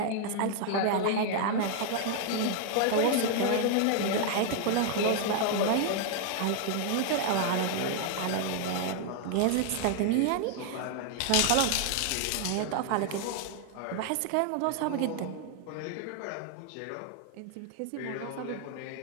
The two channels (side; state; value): both; different; correlation 0.00